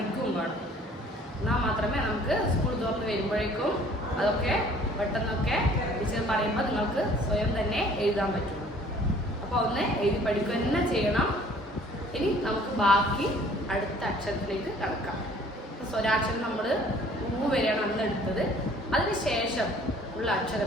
വേണം. എന്നാൽ മാത്രമേ നമുക്ക് സ്കൂൾ തുറന്ന് വരുമ്പോഴേക്കും അതൊക്കെ പെട്ടെന്നൊക്കെ ടീച്ചർ പറയുമ്പോൾ നിങ്ങൾക്ക് സ്വയം തന്നെ എഴുതാൻ പറ്റും. അപ്പോൾ ഒന്ന് എഴുതി പഠിക്കുക തന്നെ ചെയ്യണം. ഇനി നമുക്ക് ബാക്കി അടുത്ത അക്ഷരത്തിലേക്ക് കടക്കാം. സ്വരാക്ഷരം നമ്മൾ ഊ വരെയാണ് അന്ന് എടുത്തത്. അതിന് ശേഷം ഉള്ള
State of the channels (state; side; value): normal; both; correlation 0.55